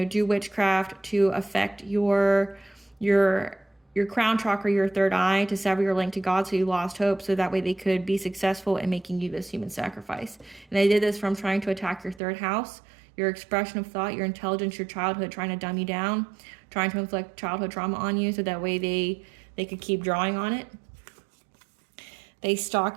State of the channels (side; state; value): left; drops out; at 12.2 s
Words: do witchcraft to affect your crown chakra, your third eye, to sever your link to God, so you lost hope, so that way they could be successful in making you this human sacrifice. And they did this from trying to attack your third house, your expression of thought, your intelligence, your childhood, trying to dumb you down, trying to inflict childhood trauma on you, so that way they could keep drawing on it. They